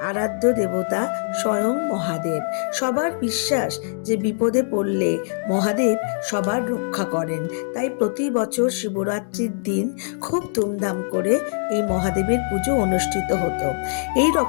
আরাধ্য দেবতা স্বয়ং মহাদেব। সবার বিশ্বাস যে বিপদে পড়লে মহাদেব সবার রক্ষা করেন। তাই প্রতি বছর শিবরাত্রির দিন খুব ধুমধাম করে এই মহাদেবের পুজো অনুষ্ঠিত হতো। এই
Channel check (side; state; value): right; silent; 64 dB below the other